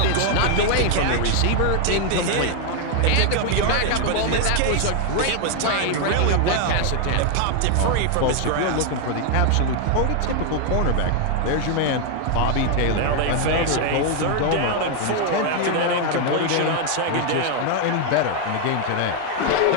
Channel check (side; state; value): both; different; correlation 0.00